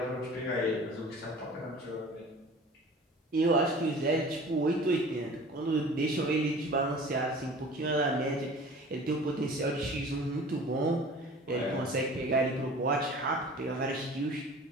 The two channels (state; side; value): normal; both; correlation 0.43